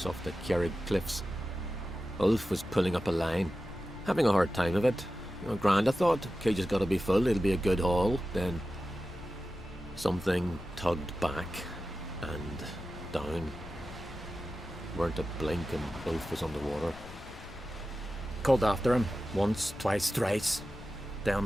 off the Kjerrig cliffs. Ulf was pulling up a line, having a hard time of it. Grand, I thought. Cage's gotta be full, it'll be a good haul. Then something tugged back and down. Weren't a blink and Ulf was underwater. Called after him, once, twice, thrice.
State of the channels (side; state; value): left; noise; rumble, 16 dB below the sound